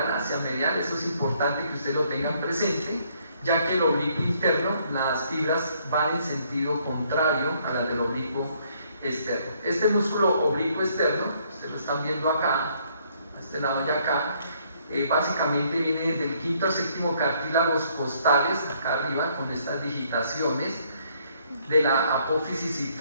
hacia medial. Eso es importante que ustedes lo tengan presente, ya que el oblicuo interno, las fibras van en sentido contrario a las del oblicuo externo. Este músculo oblicuo externo, ustedes lo están viendo acá, a este lado de acá, básicamente viene del quinto al séptimo cartílagos costales, acá arriba, con estas digitaciones de la apófisis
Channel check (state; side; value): inverted; both; correlation -0.67